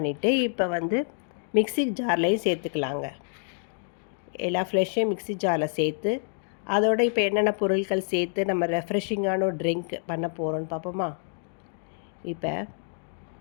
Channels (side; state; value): right; silent; 60 dB below the other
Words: இப்போ மிக்ஸி ஜார்லேயும் சேர்த்துக்கலாங்க. எல்லா ஃப்ரெஷ்ஷையும் மிக்ஸி ஜாரில் சேர்த்து அதோட இப்போ என்னென்ன பொருட்கள் சேர்த்து நம்ம ரெஃப்ரெஷிங்கான ஒரு ட்ரிங்க் பண்ண போகிறோன்னு பார்ப்போமா? இப்போ